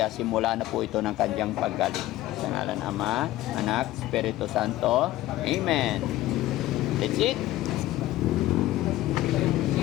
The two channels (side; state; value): right; quieter; 15.7 dB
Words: simula na po ito ng kanyang paggaling. Sa ngalan Ama, Anak, Espiritu Santo. Amen. That's it.